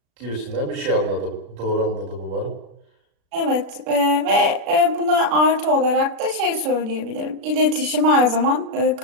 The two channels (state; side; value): late; left; 36 ms